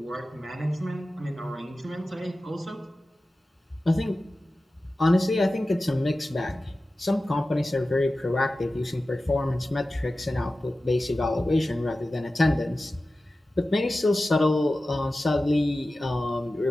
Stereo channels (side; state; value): both; normal; correlation 0.95